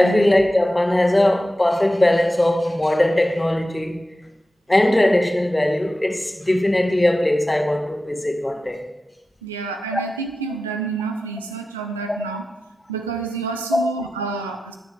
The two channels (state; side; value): normal; both; correlation 0.93